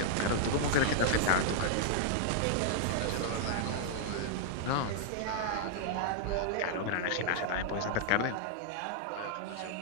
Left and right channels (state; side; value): different; both; correlation -0.01